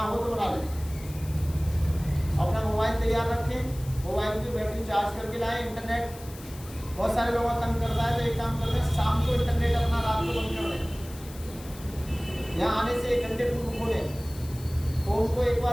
हो तो बना लें। अपना मोबाइल तैयार रखें, मोबाइल की बैटरी चार्ज करके लाएं। इंटरनेट बहुत सारे लोगों को तंग करता है, तो एक काम करते हैं, शाम को इंटरनेट अपना रात को बंद कर दें। यहाँ आने से 1 घंटे पूर्व खोलें, फोन को एक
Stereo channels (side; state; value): left; noise; hiss, 18 dB below the sound